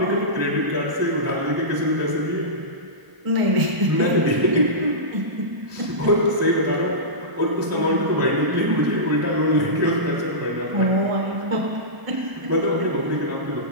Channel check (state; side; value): late; left; 1.0 ms